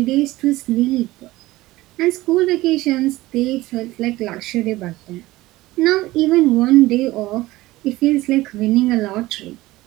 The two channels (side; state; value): left; quieter; 18.2 dB